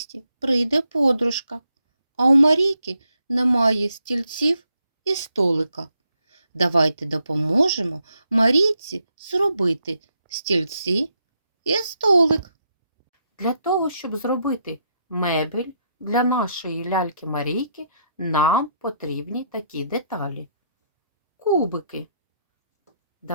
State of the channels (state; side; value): inverted; both; correlation -0.77